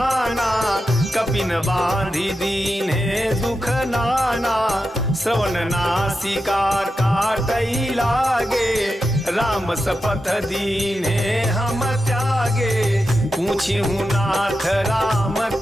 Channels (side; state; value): both; normal; correlation 0.89